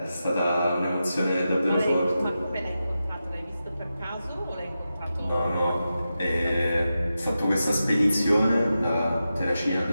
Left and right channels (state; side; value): inverted; both; correlation -0.91